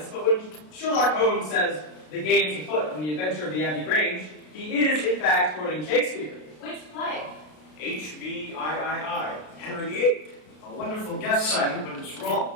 but when Sherlock Holmes says the game's afoot and the adventure of the Abbey Grange, he is, in fact, quoting Shakespeare. Which play? HVIII, Henry VIII. A wonderful guess, Simon, but it's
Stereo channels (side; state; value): right; late; 33 ms